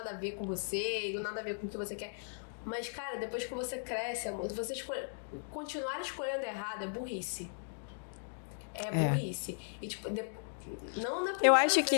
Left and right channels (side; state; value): right; silent; digital silence